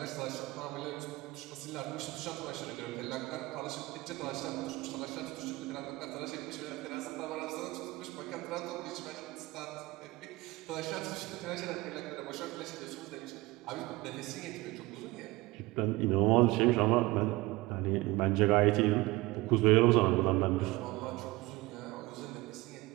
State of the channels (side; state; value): left; quieter; 20.8 dB